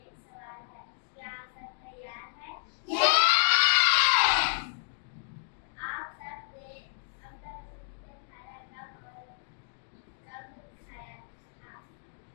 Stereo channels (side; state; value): right; silent; digital silence